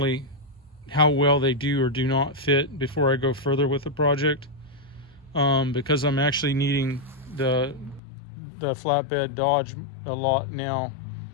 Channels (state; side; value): drops out; right; at 8.0 s